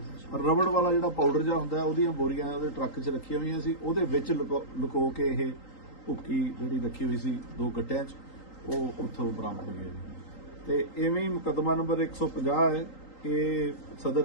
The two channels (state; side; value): late; right; 3.8 ms